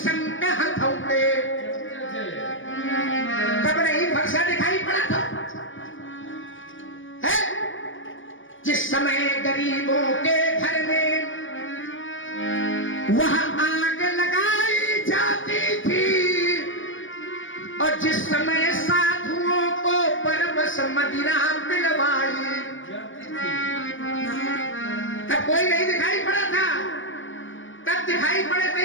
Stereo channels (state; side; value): late; right; 0.57 ms